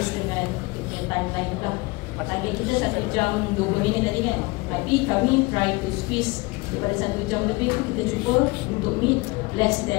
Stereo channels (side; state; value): right; quieter; 24.7 dB